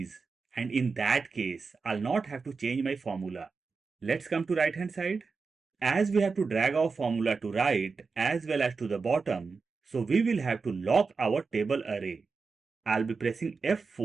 and in that case, I'll not have to change my formula. Let's come to right hand side. As we have to drag our formula to right as well as to the bottom, so we will have to lock our table array. I'll be pressing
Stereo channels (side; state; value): left; quieter; 4.7 dB